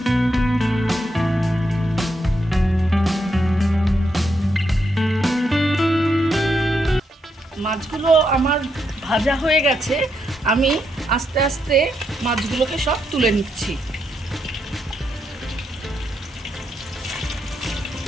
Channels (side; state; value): both; normal; correlation 0.80